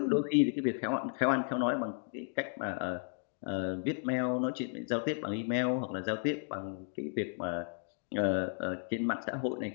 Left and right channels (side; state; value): right; silent; 55 dB below the other